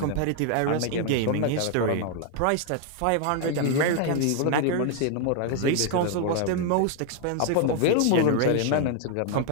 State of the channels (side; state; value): both; different; correlation 0.00